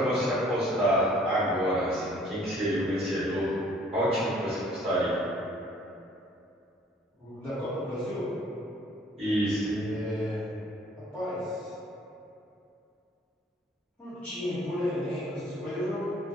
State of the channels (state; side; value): normal; both; correlation 0.56